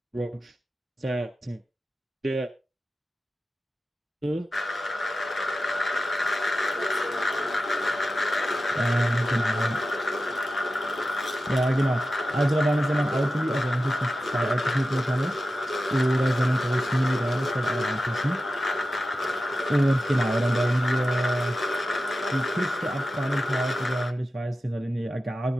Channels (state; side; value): normal; both; correlation 0.92